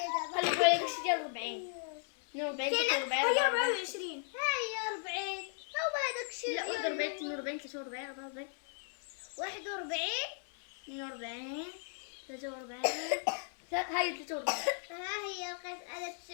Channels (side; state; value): right; silent; 54 dB below the other